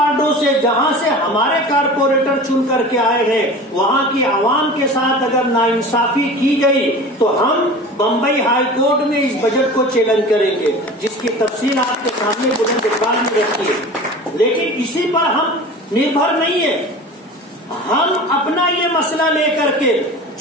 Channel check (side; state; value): both; normal; correlation 0.37